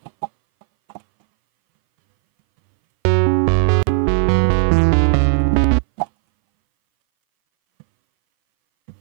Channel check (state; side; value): silent; left; 64 dB below the other